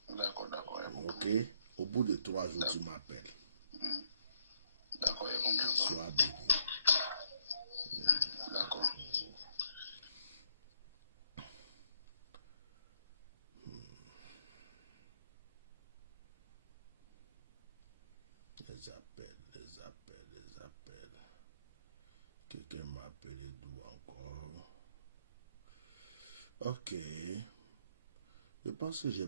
D'accord, d'accord. Ok? Au bout de 3 jours, tu m'appelles. D'accord, il y a compris. Sois béni. Les appels. Quelqu'un m'a appelé d'où encore? Ok. Je pense que j'ai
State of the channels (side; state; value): both; inverted; correlation -0.74